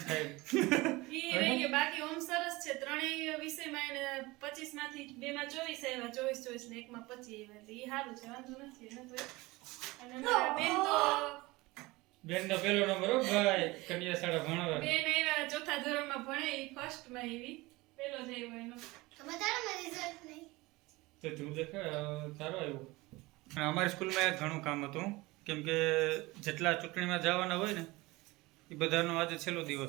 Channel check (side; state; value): left; quieter; 21.6 dB